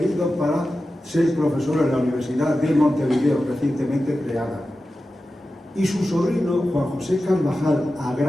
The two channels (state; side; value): normal; both; correlation 0.93